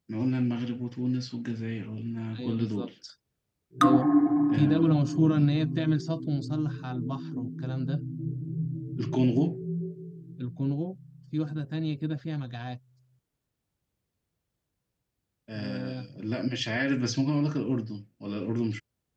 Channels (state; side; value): identical; both; correlation 1.00